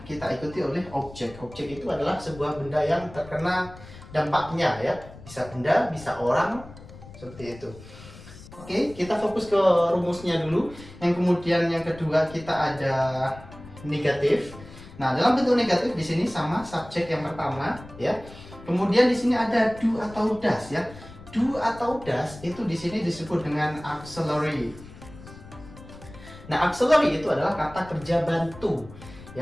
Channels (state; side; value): noise; left; rumble, 18 dB below the sound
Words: kita ikuti oleh objek. Objek itu adalah sebuah benda yang terkena dampaknya ya. Bisa benda, bisa orang, seperti itu. Oke, kita fokus ke rumusnya dulu. Yang kemudian yang kedua kita ada negatif. Nah, dalam bentuk negatif di sini sama subjek yang pertama ya. Kemudian di sini ada do atau does ya. Do atau does itu di sini disebut dengan auxiliary. Nah, auxiliary itu adalah kata kerja bantu